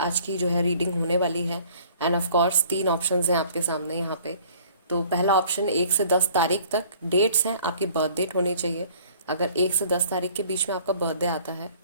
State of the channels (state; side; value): inverted; both; correlation -0.53